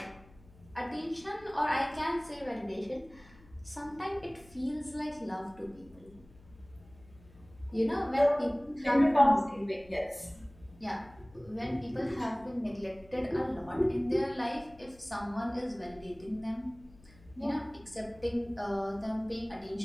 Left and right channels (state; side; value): noise; left; hum, 24 dB below the sound